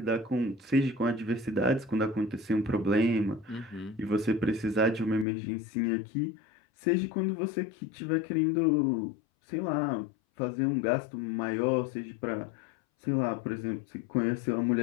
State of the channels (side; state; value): right; drops out; at 5.2 s